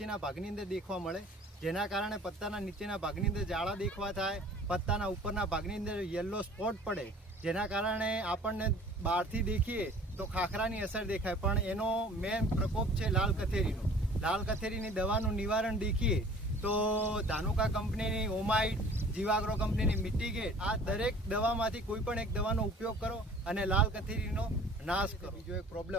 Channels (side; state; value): both; normal; correlation 0.49